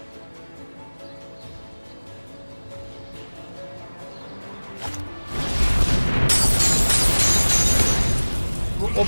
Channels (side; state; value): both; inverted; correlation -1.00